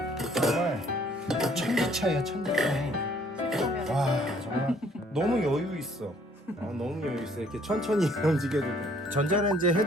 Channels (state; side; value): normal; both; correlation 0.62